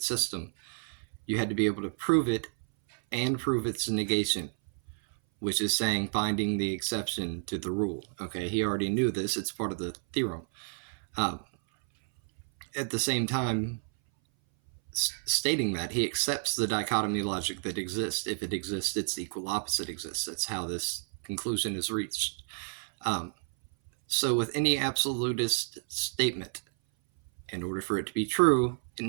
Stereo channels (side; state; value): left; silent; 57 dB below the other